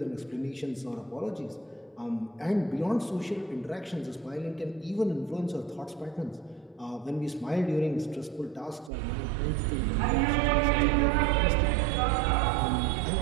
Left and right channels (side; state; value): left; drops out; at 8.9 s